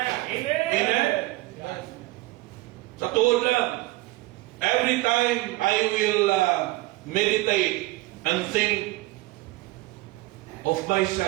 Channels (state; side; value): quieter; left; 19.6 dB